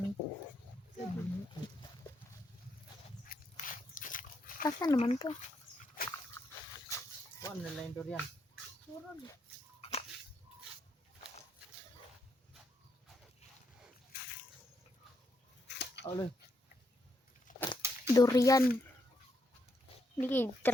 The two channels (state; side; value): normal; both; correlation 0.78